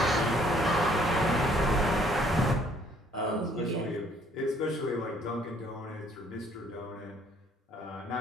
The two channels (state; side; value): normal; both; correlation 0.62